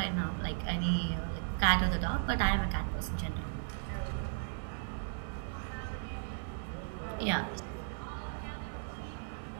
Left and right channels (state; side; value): silent; left; digital silence